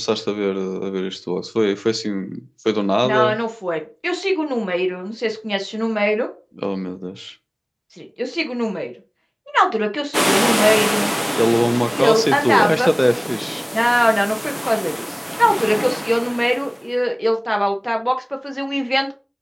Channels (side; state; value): both; identical; correlation 1.00